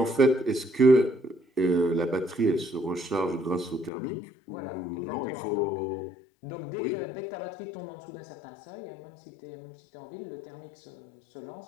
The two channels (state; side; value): drops out; right; at 3.9 s